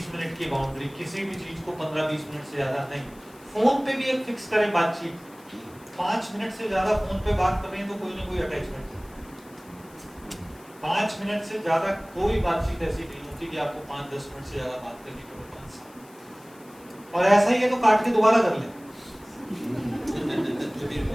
मिनट की बाउंड्री, किसी भी चीज को 15-20 मिनट से ज्यादा नहीं। फोन पे भी एक फिक्स करें बातचीत, 5 मिनट से ज्यादा फोन पे बात कर रहे हैं तो कोई ना कोई अटैचमेंट है। 5 मिनट से ज्यादा कोई बातचीत ऐसी नहीं होती कि आपको 5-10 मिनट से ज्यादा बात करनी पड़े 5 साल। और ऐसा ही है तो काट के दोबारा कर ले।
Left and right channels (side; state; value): left; noise; hiss, 25 dB below the sound